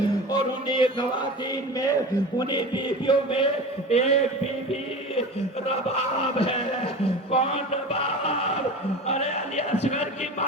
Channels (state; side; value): normal; both; correlation 0.32